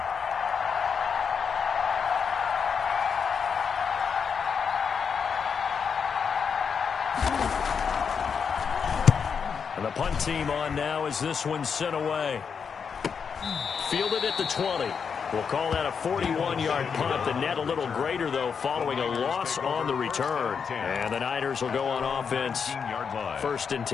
And the punt team on now as this one's sent away. Fielded at the 20. We'll call that a 41-yard punt. The net a little greater, though, following a loss on the return. And the Niners will go on offense. 1st and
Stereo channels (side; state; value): right; quieter; 6.4 dB